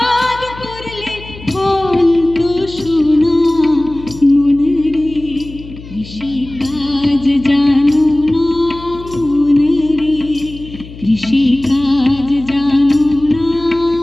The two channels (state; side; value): noise; left; hum, 16 dB below the sound